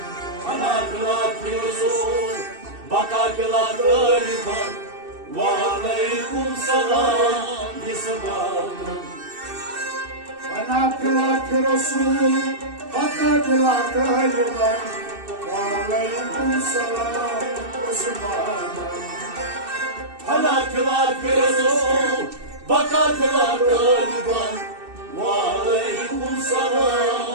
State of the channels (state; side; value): late; left; 2.7 ms